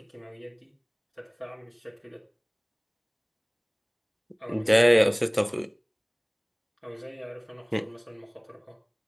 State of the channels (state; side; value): identical; both; correlation 1.00